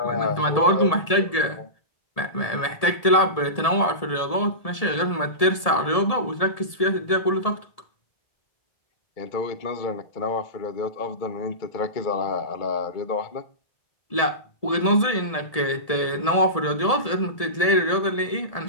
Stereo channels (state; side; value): late; right; 1.7 ms